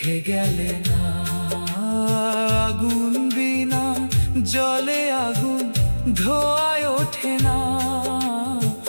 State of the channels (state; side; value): inverted; both; correlation -1.00